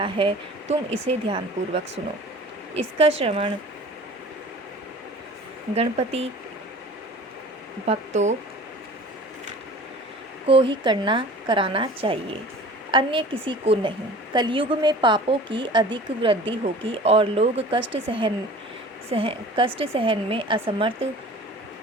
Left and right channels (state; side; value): normal; both; correlation 0.43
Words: है। तुम इसे ध्यानपूर्वक सुनो। इसका श्रवण गणपति भक्तों को ही कराना चाहिए, अन्य किसी को नहीं। कलयुग में पापों की अधिक वृद्धि होगी और लोग कष्ट सहन में असमर्थ